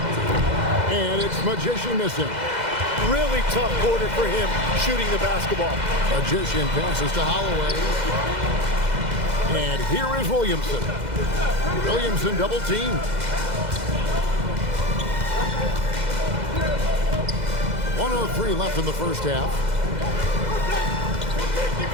And it's Magician missing. Really tough quarter for him shooting the basketball. Magician passes to Holloway. And here is Williamson. Williamson double teamed. 1:03 left in the first half.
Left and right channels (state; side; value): late; left; 2.0 ms